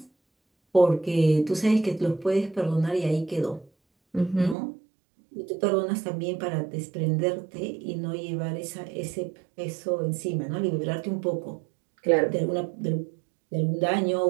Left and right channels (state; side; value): drops out; left; at 4.5 s